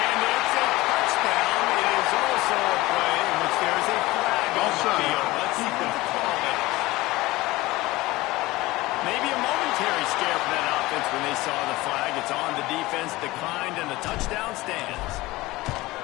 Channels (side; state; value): right; quieter; 19.6 dB